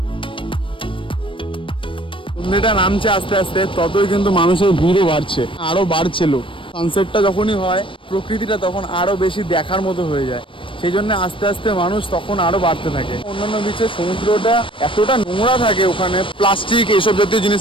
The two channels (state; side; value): late; right; 0.25 ms